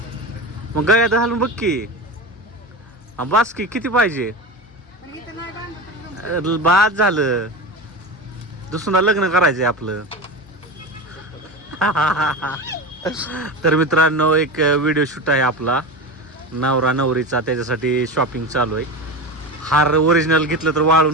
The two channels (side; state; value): both; normal; correlation 0.24